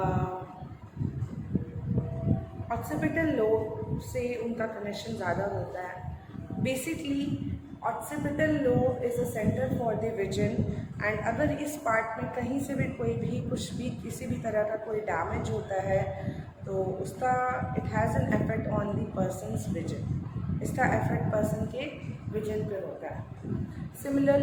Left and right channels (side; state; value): both; identical; correlation 1.00